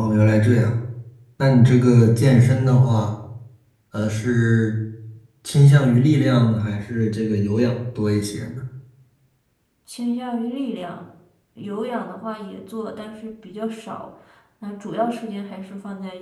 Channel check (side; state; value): both; identical; correlation 1.00